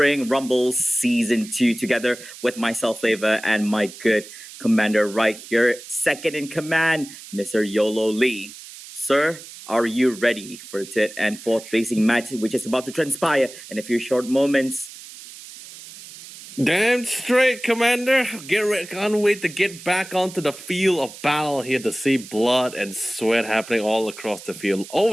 Rumble Season 2 together with myself, Flavor, and my good commander right here, second in command, Mr. Yolo Lee. Sir, are you ready for the third and fourth placing match, which is about to transpire in a few short moments? Damn straight, Commander. Can't wait to get back onto the field of battle here to see blood and sweat happening all across the field.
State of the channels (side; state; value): right; noise; hiss, 16 dB below the sound